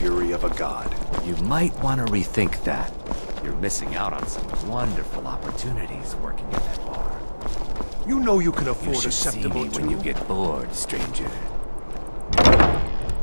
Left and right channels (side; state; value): both; inverted; correlation -1.00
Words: of a god. You might want to rethink that. You're missing out on some wonderful opportunities working in that bar. You know you can You afford should a see acceptable me when you get bored, stranger.